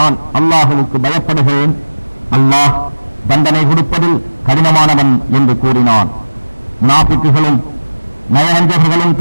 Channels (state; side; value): inverted; both; correlation -1.00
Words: நான் அல்லாஹுவுக்கு பயப்படுகிறேன், அல்லாஹ் தண்டனை கொடுப்பதில் கடினமானவன் என்று கூறினான். முனாஃபிக்குகளும் நயவஞ்சகர்களும்